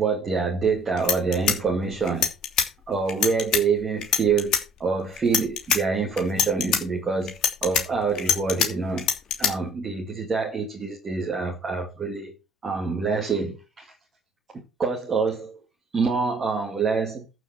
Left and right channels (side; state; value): both; normal; correlation 0.56